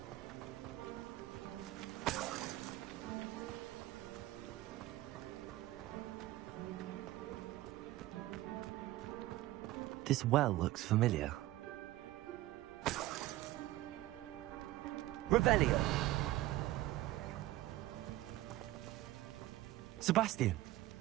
This well looks familiar. Revelio. Sebastian,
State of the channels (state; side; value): quieter; left; 16.3 dB